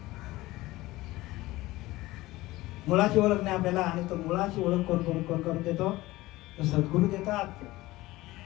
मुलाची ओळख नाही आपल्याला. आणि तो मुलाची ओळख कोण करून देतो? तो सद्गुरू देतात.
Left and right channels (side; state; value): right; quieter; 18.6 dB